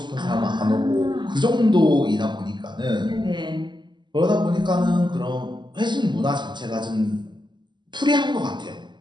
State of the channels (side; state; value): left; late; 0.22 ms